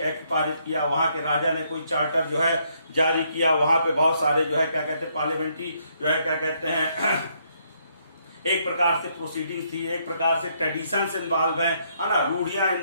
पारित किया, वहां के राजा ने कोई चार्टर जो है जारी किया, वहां पे बहुत सारे जो है क्या कहते हैं पार्लियामेंट्री जो है क्या कहते हैं एक प्रकार से प्रोसीडिंग थी, एक प्रकार से ट्रेडिशंस इन्वॉल्व है ना, रूढ़ियां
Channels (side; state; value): both; inverted; correlation -0.72